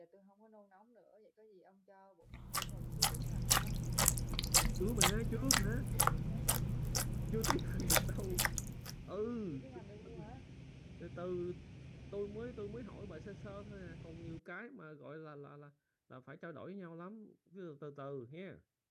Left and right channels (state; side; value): identical; both; correlation 1.00